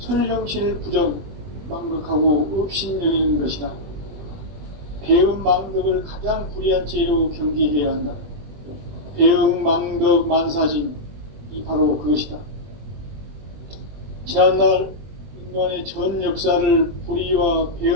부정, 망덕하고 업신여기는 것이다. 배음 망덕을 가장 불의한 죄로 경계해야 한다. 배음 망덕 만사진이 바로 그것이다. 지난날 인간의 전 역사를 불의와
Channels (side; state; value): left; late; 21 ms